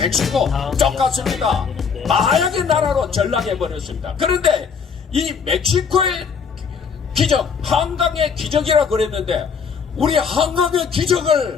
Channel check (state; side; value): quieter; right; 6.1 dB